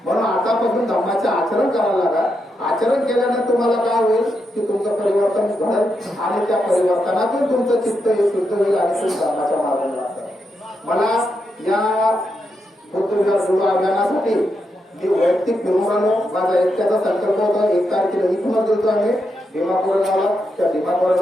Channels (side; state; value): both; normal; correlation 0.83